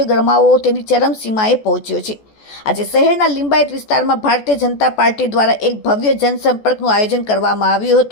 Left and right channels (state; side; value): late; right; 14 ms